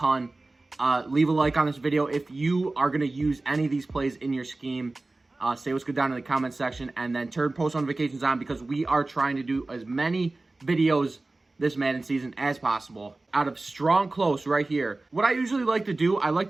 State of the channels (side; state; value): left; quieter; 3.1 dB